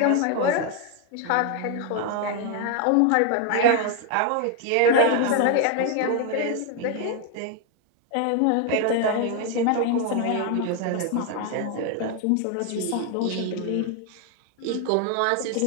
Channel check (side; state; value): both; different; correlation 0.01